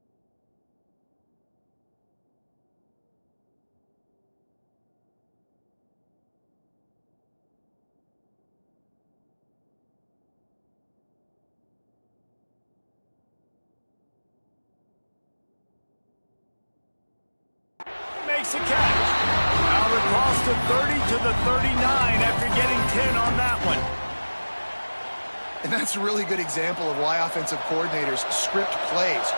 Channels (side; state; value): both; inverted; correlation -1.00